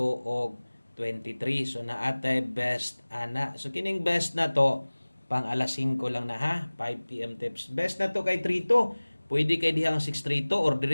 og 23. So naatay best ana. So kining best na to pang alas 5 lang na ha. 5 PM tips. Best na to kay 3 to. Pwede kay dihang 6 3 to or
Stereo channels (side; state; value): both; inverted; correlation -1.00